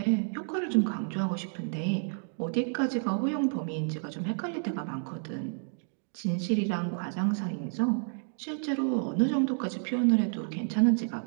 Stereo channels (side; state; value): left; silent; 58 dB below the other